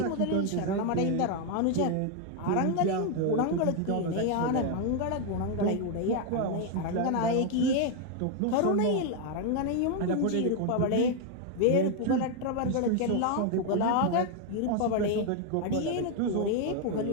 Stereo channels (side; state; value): both; different; correlation 0.01